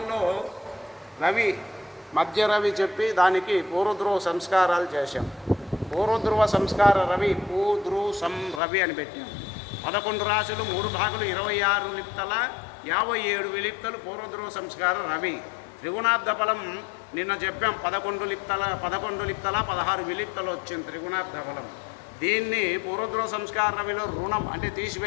రవి, మధ్య రవి చెప్పి దానికి పూర్వధ్రువ సంస్కారాలు చేశాం. పూర్వధ్రువ సంస్కార రవి, పూధ్రువ రవి అని పెట్టాం. 11 రాశులు, 3 భాగులు, 26 లిప్తల, 57 విలిప్తలు పూర్వధ్రువ సంస్కార రవి. త్రిగుణాబ్ద ఫలం నిన్న చెప్పాం, 11 లిప్తల 16 విలిప్తలు వచ్చింది త్రిగుణాబ్ద ఫలం. దీన్ని పూర్వధ్రువ సంస్కార రవిలో రుణం అంటే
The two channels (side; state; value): right; drops out; at 8.6 s